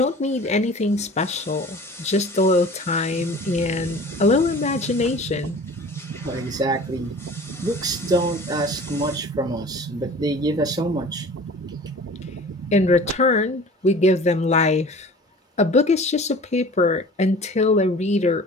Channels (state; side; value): normal; both; correlation 0.43